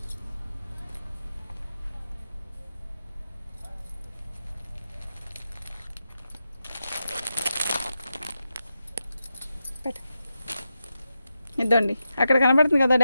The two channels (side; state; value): both; inverted; correlation -0.88